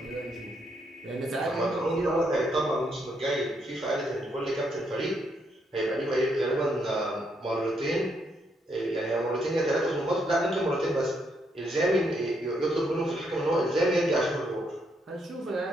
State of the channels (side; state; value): both; normal; correlation 0.76